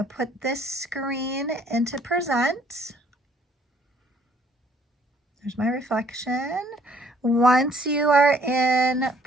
put this screen into present. There's my reflection. Once you are in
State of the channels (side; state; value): both; normal; correlation 0.62